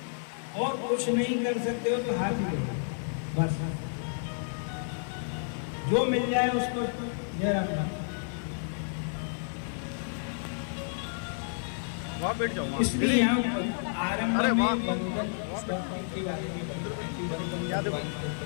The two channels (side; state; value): right; silent; digital silence